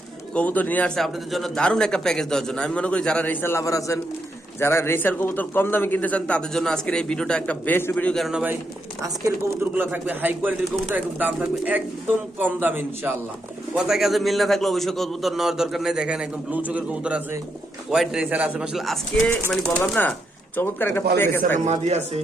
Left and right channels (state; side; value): normal; both; correlation 0.80